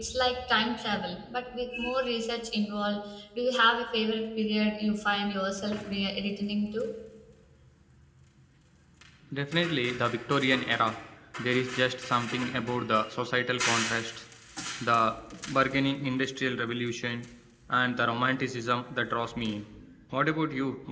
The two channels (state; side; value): identical; both; correlation 1.00